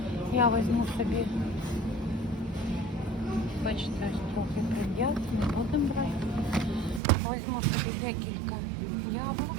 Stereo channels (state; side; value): drops out; left; at 7.0 s